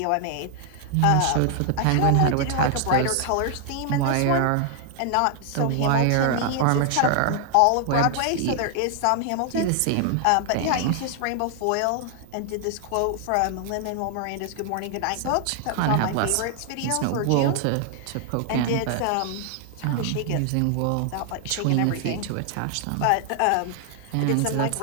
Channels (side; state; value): both; different; correlation 0.00